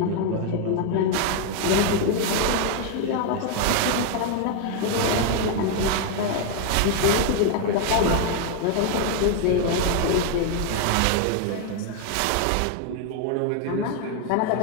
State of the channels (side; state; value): both; different; correlation 0.01